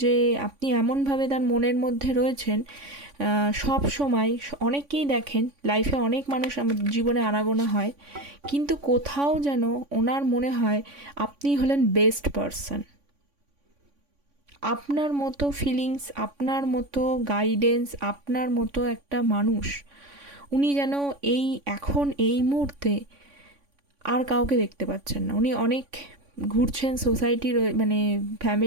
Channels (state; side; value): late; left; 3.5 ms